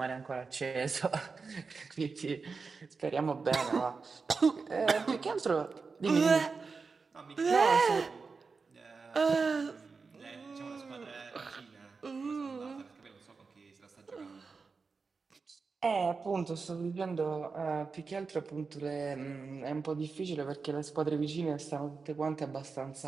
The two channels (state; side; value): quieter; left; 4.7 dB